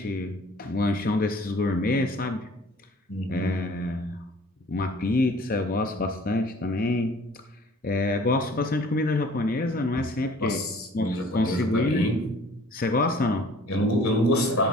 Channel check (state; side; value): normal; both; correlation 0.51